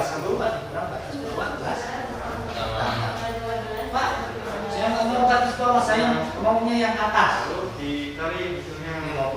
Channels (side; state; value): both; identical; correlation 1.00